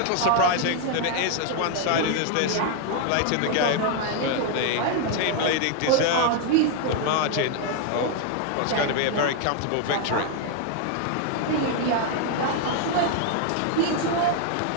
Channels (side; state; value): both; different; correlation 0.00